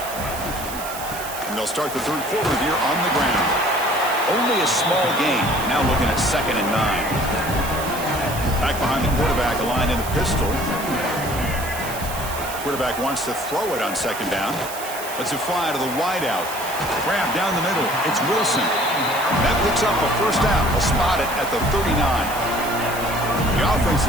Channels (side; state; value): right; noise; hiss, 11 dB below the sound